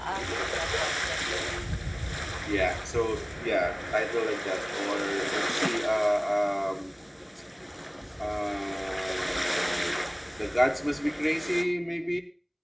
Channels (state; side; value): identical; both; correlation 1.00